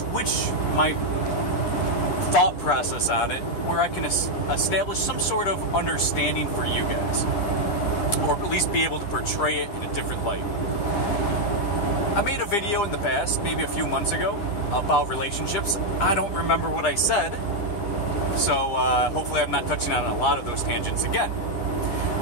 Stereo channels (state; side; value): late; right; 9.9 ms